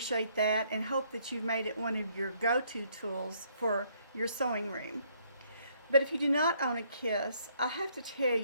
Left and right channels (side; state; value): both; inverted; correlation -0.68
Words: that and hope that you've made it one of your go-to tools for your sewing room. But if you do not own a KISS, I have to tell